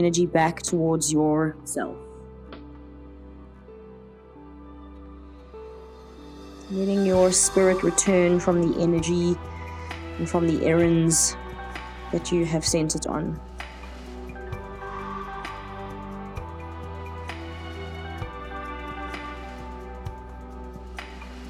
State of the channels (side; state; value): both; identical; correlation 1.00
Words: back towards yourself. Letting your spirit return from the energy and from the errands that you have sent it on.